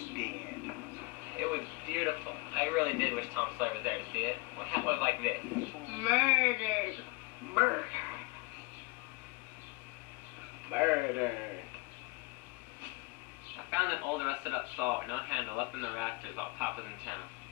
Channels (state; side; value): quieter; right; 25.1 dB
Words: dead. It was beautiful. I really did wish Tom Sawyer was there to see it. What happened was like this. Murdered. Murder. Murder. I found an old rusted-up saw with no handle up in the rafters while Pop was in town.